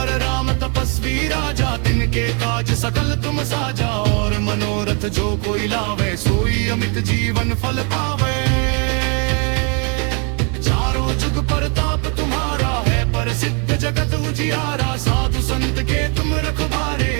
राम तपस्वी राजा तिनके काज सकल तुम साजा और मनोरथ जो कोई लावे सोई अमित जीवन फल पावे। चारों जुग परताप तुम्हारा है प्रसिद्ध जगत उजियारा साधु संत के तुम रखवारे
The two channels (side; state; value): left; quieter; 35.9 dB